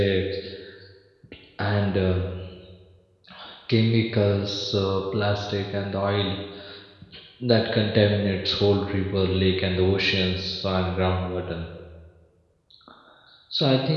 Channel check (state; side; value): identical; both; correlation 1.00